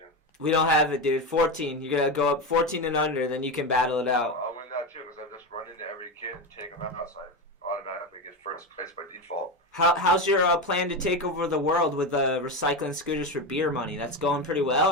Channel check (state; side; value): normal; both; correlation 0.17